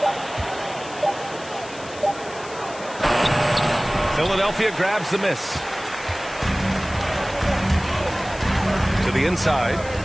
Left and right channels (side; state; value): left; noise; hiss, 17 dB below the sound